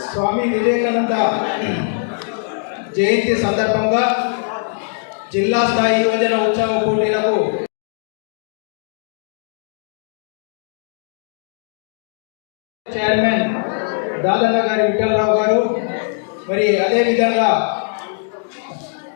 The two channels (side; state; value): right; silent; digital silence